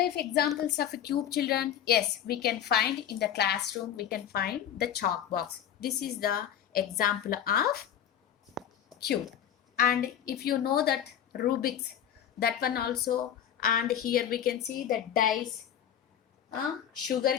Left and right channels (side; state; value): right; quieter; 9.9 dB